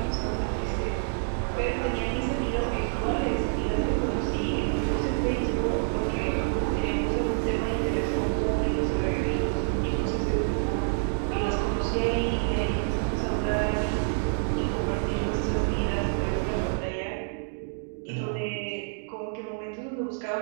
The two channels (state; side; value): silent; left; digital silence